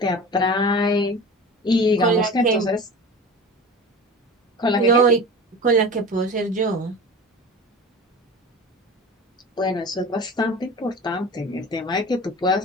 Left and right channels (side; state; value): both; normal; correlation 0.35